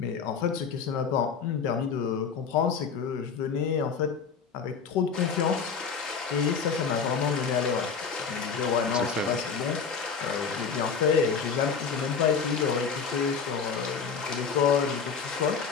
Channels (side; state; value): right; quieter; 6.0 dB